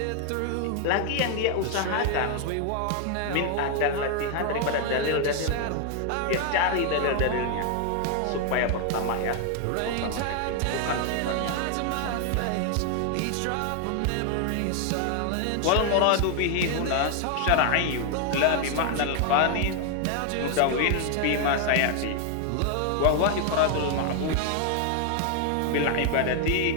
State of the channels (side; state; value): both; different; correlation 0.00